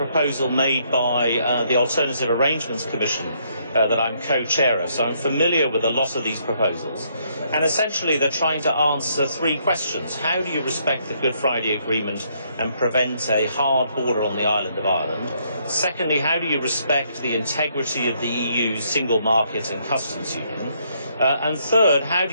made by the Alternative Arrangements Commission that I'm co-chair of, so I'm familiar with a lot of these proposals. And essentially they're trying to answer three questions. How do you respect the Good Friday Agreement and prevent a hard border on the island of Ireland? Secondly, how do you respect the integrity of the EU's single market and customs union? And third, how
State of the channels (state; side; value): inverted; both; correlation -0.71